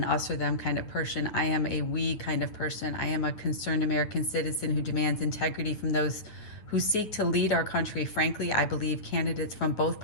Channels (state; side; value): late; right; 9.4 ms